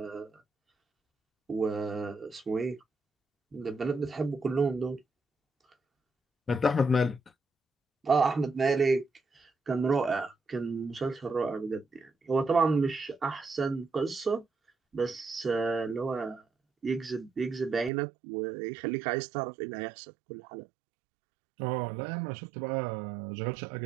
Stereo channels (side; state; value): left; drops out; at 17.9 s